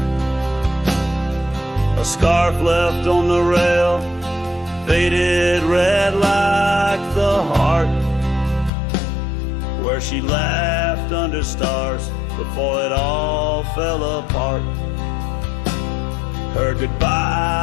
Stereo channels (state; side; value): drops out; right; at 8.7 s